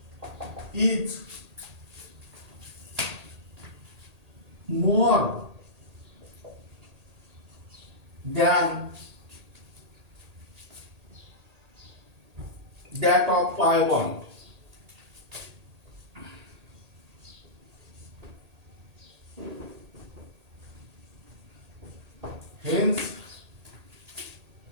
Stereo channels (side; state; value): left; late; 1.8 ms